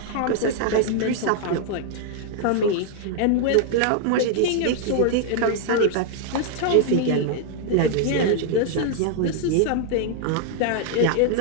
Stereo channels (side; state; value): both; different; correlation 0.00